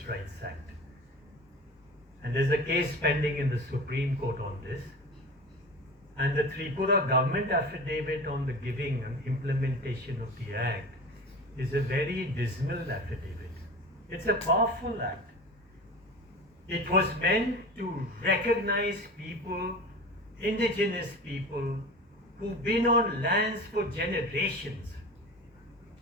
Rights Act, and there's a case pending in the Supreme Court on this, and the Tripura government affidavit on the giving and implementation of the act is a very dismal affidavit. It's a powerful act. It was meant to recognize people, indigenous people, who've been on lands for generations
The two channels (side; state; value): both; normal; correlation 0.33